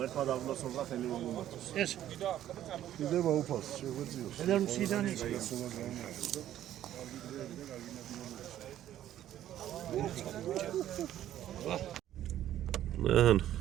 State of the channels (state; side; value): quieter; left; 12.1 dB